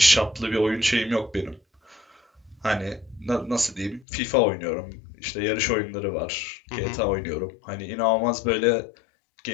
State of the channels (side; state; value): right; drops out; at 4.0 s